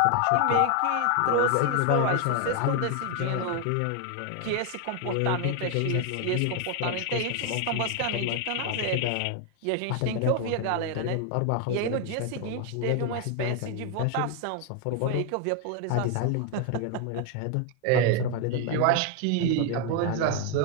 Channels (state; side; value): different; both; correlation 0.01